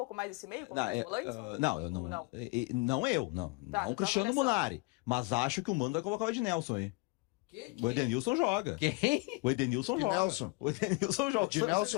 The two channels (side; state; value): right; quieter; 26.9 dB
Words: mais esse meio? Como volantes? Não, eu não. Não. Tá, não o Cristiano Munari. Mas acho que o Mano vai colocar o Ednelson aí. O Edenilson joga. Quem? O Edenilson joga. O Edenilson joga.